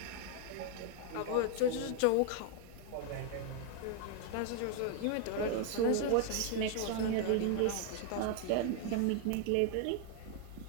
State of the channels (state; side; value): different; both; correlation 0.00